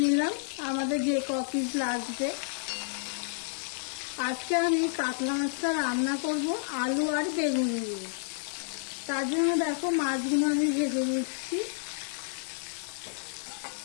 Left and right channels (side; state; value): right; silent; digital silence